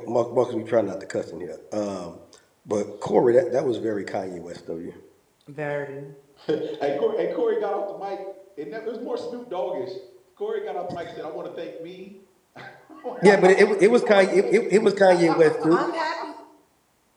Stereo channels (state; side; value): identical; both; correlation 1.00